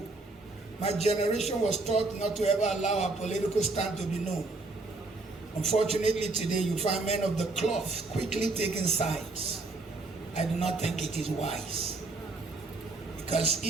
my generation was taught not to ever allow our political stand to be known. Unfortunately, today you find men of the cloth quickly taking sides. I do not think it is wise. Because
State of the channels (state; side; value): quieter; left; 3.4 dB